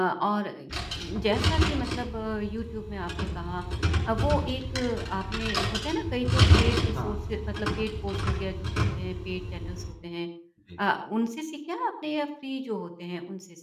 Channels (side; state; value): both; identical; correlation 1.00